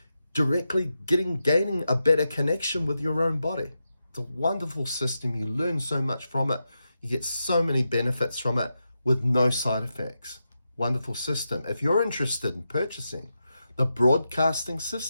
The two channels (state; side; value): inverted; both; correlation -0.88